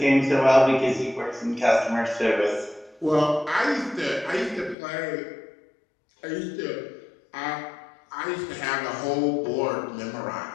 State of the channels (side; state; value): right; drops out; at 4.8 s